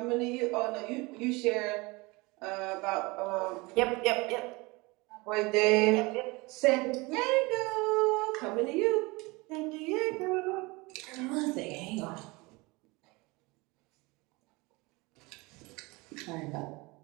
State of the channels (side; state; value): left; quieter; 24.6 dB